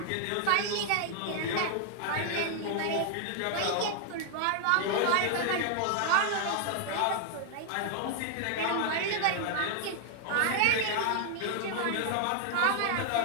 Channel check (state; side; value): different; both; correlation 0.00